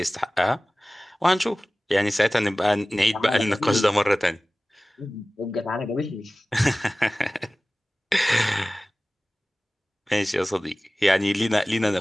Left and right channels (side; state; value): both; normal; correlation 0.97